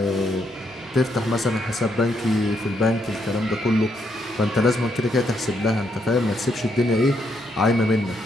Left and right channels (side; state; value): both; normal; correlation 0.76